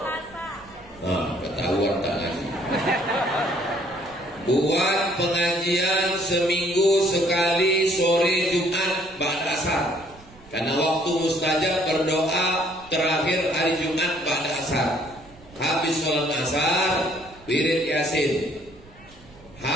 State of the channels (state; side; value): noise; right; rumble, 24 dB below the sound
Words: Ketahuan tak ngaji. Buat pengajian seminggu sekali sore Jumat ba'da asar. Karena waktu mustajab berdoa terakhir hari Jumat ba'da asar. Habis sholat asar, wirid Yasin.